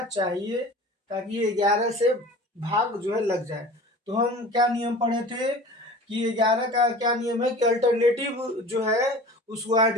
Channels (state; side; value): normal; both; correlation 0.40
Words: चाहिए ताकि ये 11 से भाग जो है लग जाए। तो हम क्या नियम पढ़े थे कि 11 का क्या नियम है कि अल्टरनेटिव जो है उसको